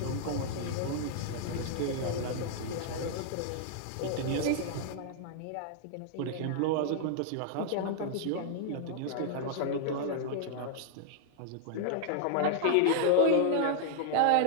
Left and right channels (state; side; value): different; both; correlation -0.01